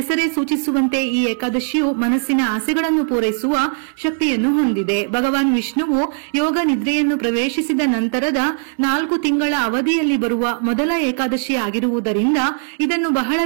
ಸೂಚಿಸುವಂತೆ ಈ ಏಕಾದಶಿಯು ಮನಸ್ಸಿನ ಆಸೆಗಳನ್ನು ಪೂರೈಸುವ ಶಕ್ತಿಯನ್ನು ಹೊಂದಿದೆ. ಭಗವಾನ್ ವಿಷ್ಣುವು ಯೋಗ ನಿದ್ರೆಯನ್ನು ಪ್ರವೇಶಿಸಿದ ನಂತರದ 4 ತಿಂಗಳ ಅವಧಿಯಲ್ಲಿ ಬರುವ ಮೊದಲ ಏಕಾದಶಿ ಆಗಿರುವುದರಿಂದ ಇದನ್ನು ಬಹಳ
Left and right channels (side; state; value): left; silent; 64 dB below the other